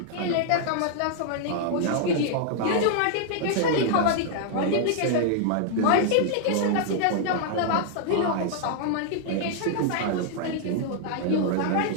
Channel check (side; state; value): both; different; correlation -0.01